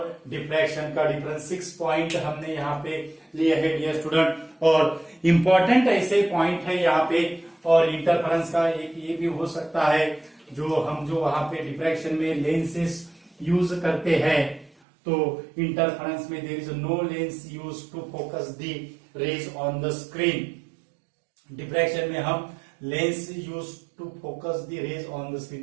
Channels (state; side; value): drops out; left; at 14.7 s